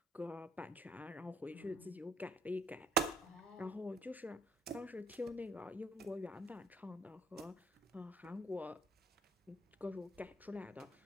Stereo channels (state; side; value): normal; both; correlation 0.61